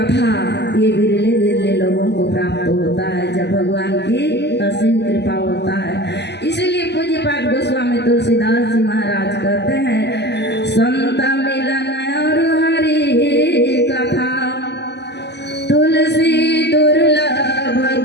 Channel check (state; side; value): late; right; 0.50 ms